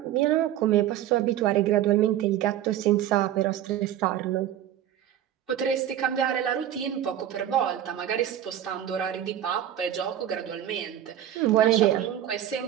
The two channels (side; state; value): left; quieter; 11.3 dB